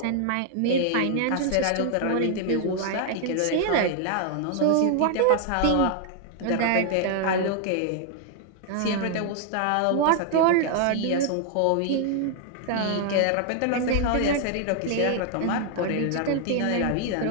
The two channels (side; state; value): both; different; correlation 0.00